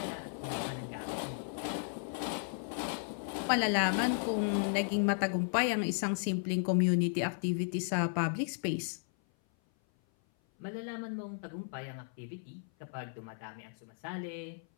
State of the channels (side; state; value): right; silent; 55 dB below the other